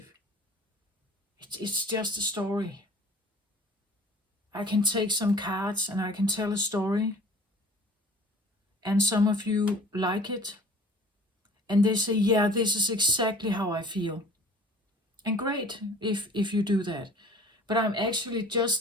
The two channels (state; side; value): normal; both; correlation 0.47